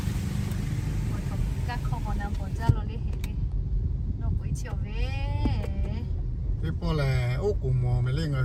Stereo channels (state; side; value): identical; both; correlation 1.00